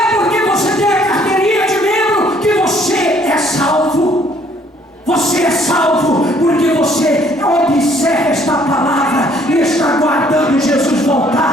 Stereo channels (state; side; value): normal; both; correlation 0.62